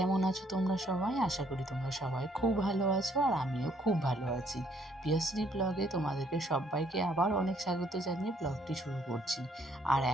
আছো তোমরা সবাই? আশা করি তোমরা সবাই খুব ভালো আছো আর আমিও খুব ভালো আছি। পিয়াশ্রী ব্লগে তোমাদেরকে সবাইকে আবার অনেক স্বাগত জানিয়ে ব্লগটি শুরু করছি। আর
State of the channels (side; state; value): both; normal; correlation 0.66